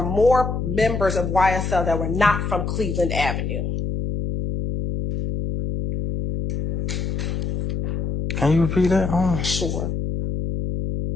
more members of YSL that were not from Cleveland Avenue? Can you repeat that? Sure.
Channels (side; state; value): left; noise; hum, 2 dB below the sound